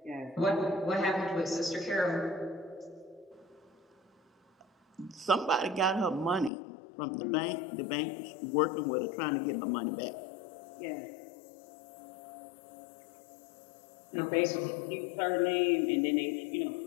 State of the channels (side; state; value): right; drops out; at 6.5 s